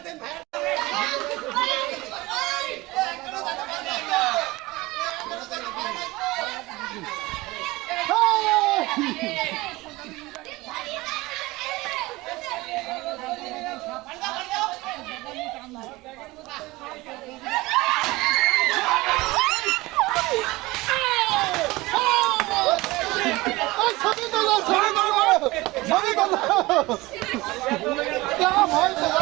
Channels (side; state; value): left; quieter; 20.8 dB